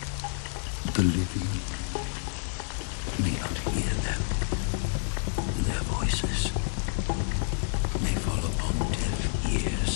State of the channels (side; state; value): right; silent; 56 dB below the other